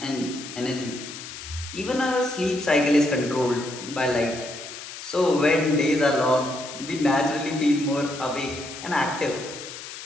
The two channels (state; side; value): noise; left; hiss, 11 dB below the sound